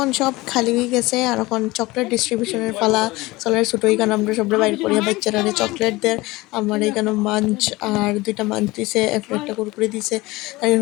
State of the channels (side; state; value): right; quieter; 20.9 dB